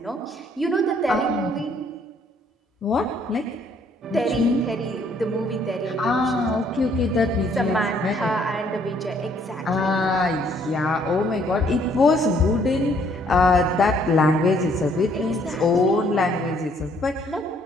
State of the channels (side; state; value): both; normal; correlation 0.65